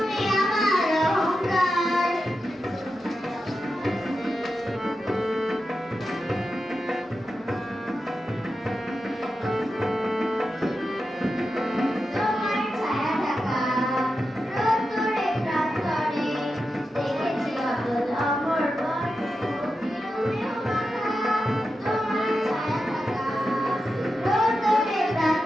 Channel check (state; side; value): normal; both; correlation 0.90